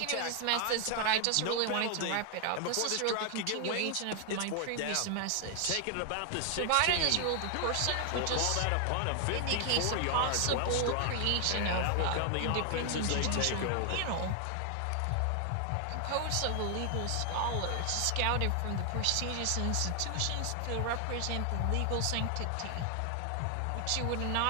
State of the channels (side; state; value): both; different; correlation 0.00